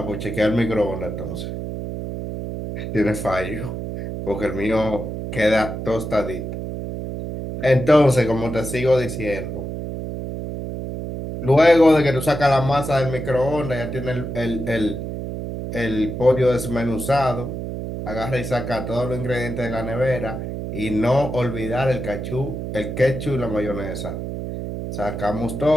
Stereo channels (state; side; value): noise; right; hum, 6 dB below the sound